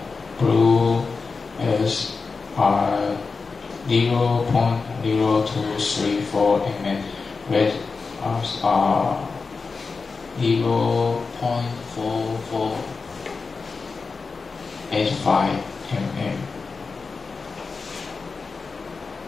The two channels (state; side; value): quieter; right; 4.5 dB